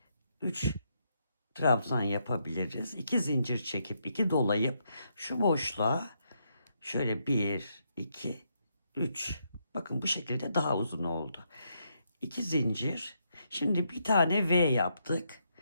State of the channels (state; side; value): inverted; both; correlation -0.78